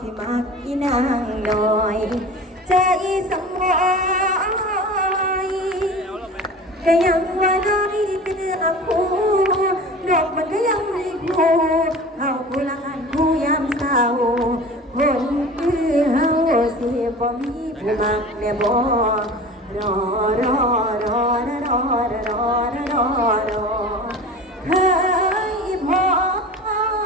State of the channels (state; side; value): normal; both; correlation 0.37